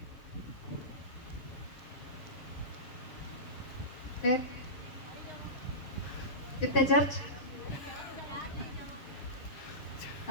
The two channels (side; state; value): right; late; 6.8 ms